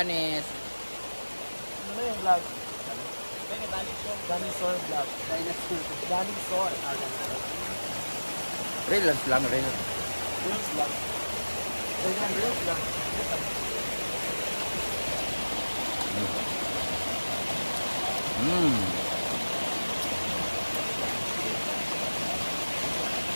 Ano yung vlog? Dinosaur vlog. Dinosaur. Reels lang, reels. Reels vlog. Reels vlog.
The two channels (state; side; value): inverted; both; correlation -1.00